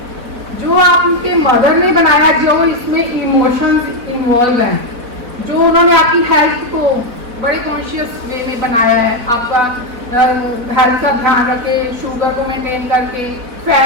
जो आपके मदर ने बनाया, जो इसमें इमोशंस इन्वॉल्व हैं, जो उन्होंने आपकी हेल्थ को बड़े कॉन्शियस वे में बनाया है, आपका हेल्थ का ध्यान रखे, शुगर को मेंटेन करके,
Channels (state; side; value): late; left; 4.1 ms